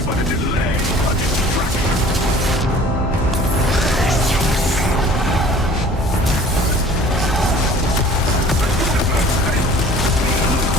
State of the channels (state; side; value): normal; both; correlation 0.48